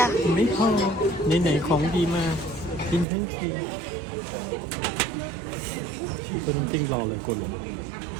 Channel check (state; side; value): drops out; left; at 3.1 s